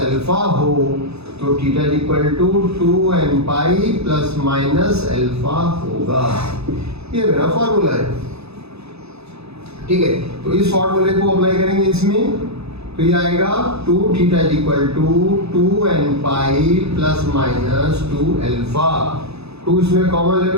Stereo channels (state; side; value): late; left; 0.79 ms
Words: alpha हो तो theta is equal to 2n pi plus minus alpha होगा। ये मेरा फॉर्मूला है, ठीक है। तो इस फॉर्मूले को अप्लाई करेंगे इसमें, तो ये आएगा 2 theta is equal to 2n pi plus minus 2 alpha. 2 इसमें कॉमन ले